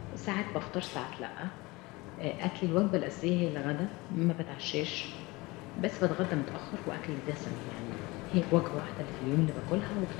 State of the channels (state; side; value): quieter; right; 22.8 dB